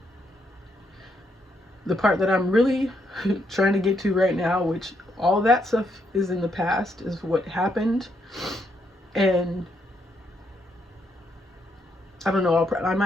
The part that I'm really trying to get to right now, which all that stuff is in the past, is what happened. And I don't know, I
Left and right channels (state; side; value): normal; both; correlation 0.76